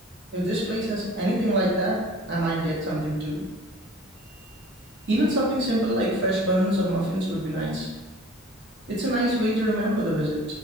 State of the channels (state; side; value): normal; both; correlation 0.47